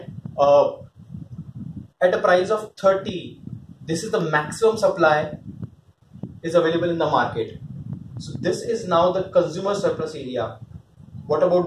at a price of 30, this is the maximum supply is available in the market. So this is now the consumer surplus area. What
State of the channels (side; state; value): both; identical; correlation 1.00